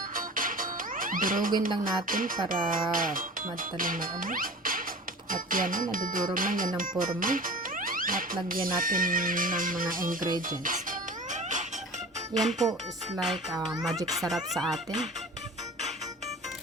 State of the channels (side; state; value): both; normal; correlation 0.38